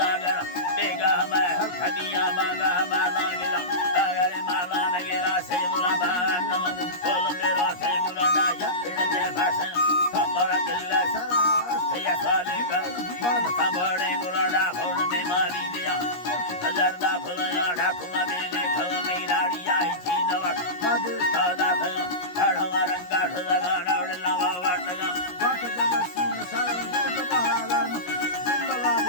बेगा मैं हर खदिया मांगा माला गिरा दागरे माला नगेरा से बुरा बानो बोल मेरो थे बुरा या इडले भाषण खबर किल्ला सारा या साले कर मान सबड़े गुराडा भोर में मारी दिया हजारदा फुलया ढाकुआ बेले खल में राड़ी आई छी नवा मादे सौदा भयो ढाढ़वा रंगा सगा नवड़ला वाटगा वाट जगत सीन सारा गोद महाराज जिंदला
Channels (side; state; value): right; late; 17 ms